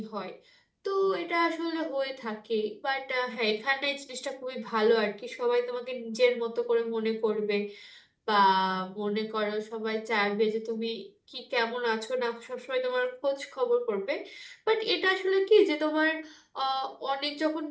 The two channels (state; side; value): identical; both; correlation 1.00